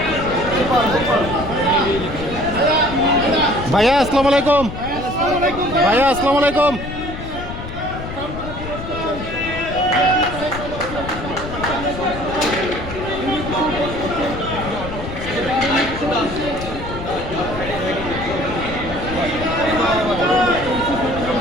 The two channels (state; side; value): noise; left; rumble, 9 dB below the sound